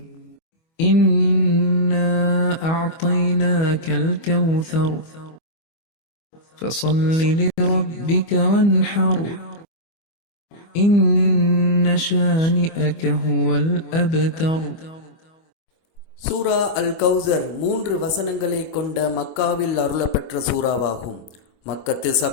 இன்னா அஅதைனாகல் கௌசர் فصل لربك وانحر إن شانئك هو الأبتر. சூரா அல் கௌசர் 3 வசனங்களை கொண்ட மக்காவில் அருளப்பெற்ற சூறாவாகும். மக்கத்து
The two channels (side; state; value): right; late; 25 ms